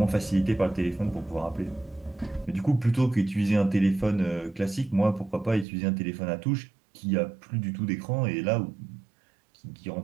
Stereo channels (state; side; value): drops out; left; at 5.7 s